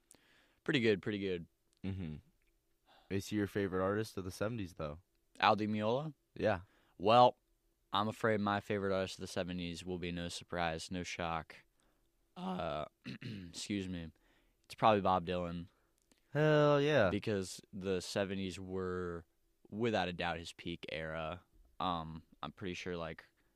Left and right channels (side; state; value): both; identical; correlation 1.00